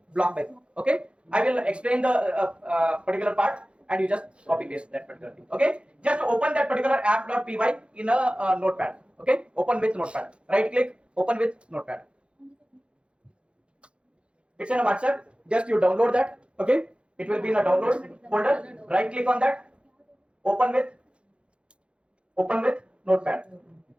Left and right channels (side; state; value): left; late; 0.058 ms